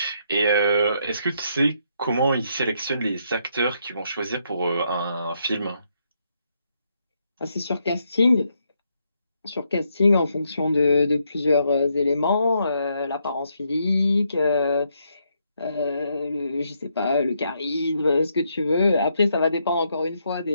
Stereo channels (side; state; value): both; inverted; correlation -0.77